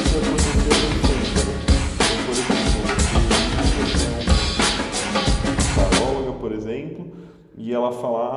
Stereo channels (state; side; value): identical; both; correlation 1.00